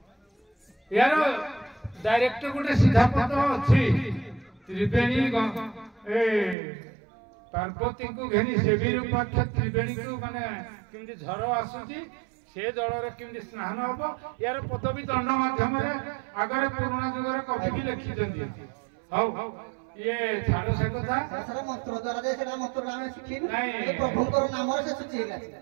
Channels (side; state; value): left; drops out; at 6.6 s